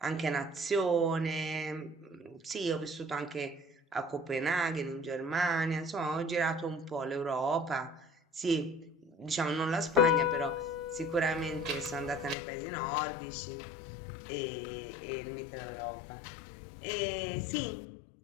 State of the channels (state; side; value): drops out; right; at 12.4 s